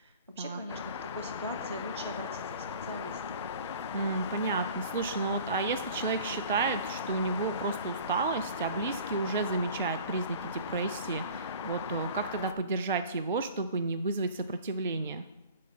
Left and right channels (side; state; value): both; inverted; correlation -0.43